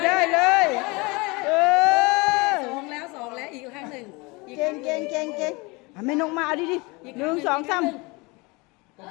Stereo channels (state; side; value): quieter; right; 26.2 dB